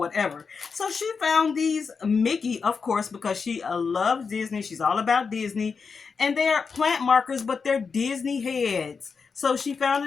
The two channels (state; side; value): quieter; right; 5.3 dB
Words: So she found these Mickey, of course, because she loves Disney. She's all about Disney. And they're plant markers, but they're Disney heads. So she